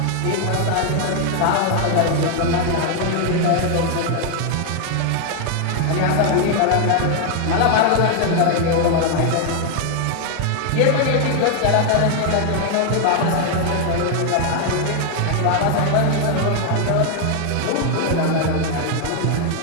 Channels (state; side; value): different; both; correlation 0.00